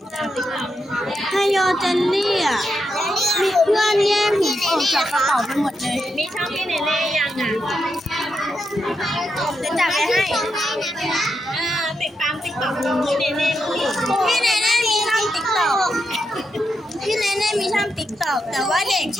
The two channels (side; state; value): both; normal; correlation 0.84